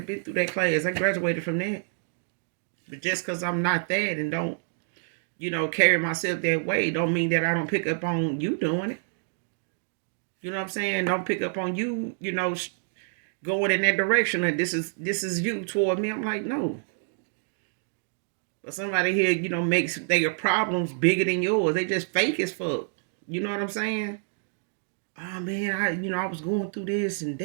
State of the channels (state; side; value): silent; left; digital silence